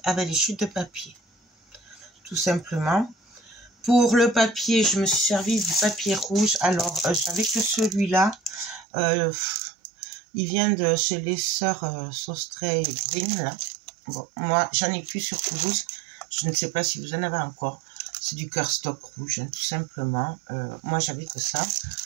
avec les chutes de papier. Tout simplement. Pour le papier, je me suis servi du papier rouge. Alors, j'avais que celui-là. Il vient de chez les sœurs Sostray Green, là. Bon, moi, j'en ai plus sur Toulouse. Je ne sais pas si vous en avez encore. C'est du cardstock rouge, hein, tout simplement. Moi, j'avais que ça.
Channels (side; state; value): left; drops out; at 8.8 s